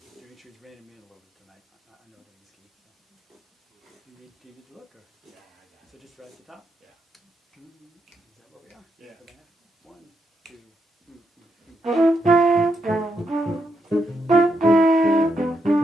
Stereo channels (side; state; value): both; normal; correlation 0.80